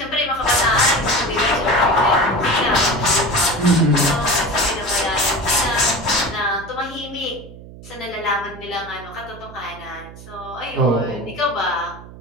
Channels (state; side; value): noise; right; hum, 17 dB below the sound